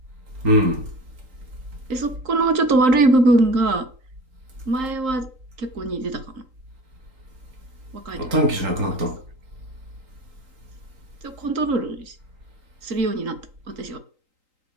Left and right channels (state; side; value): late; left; 3.8 ms